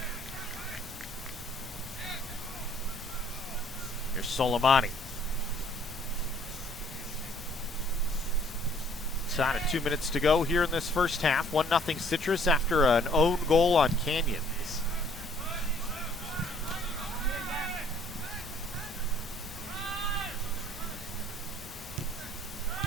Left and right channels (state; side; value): noise; left; hum, 24 dB below the sound